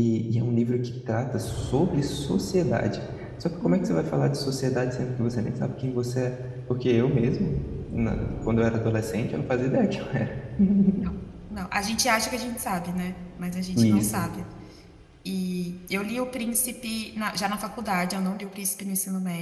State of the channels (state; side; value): identical; both; correlation 1.00